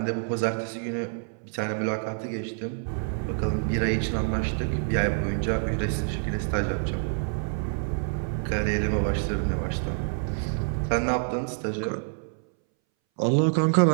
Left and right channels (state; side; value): silent; left; 60 dB below the other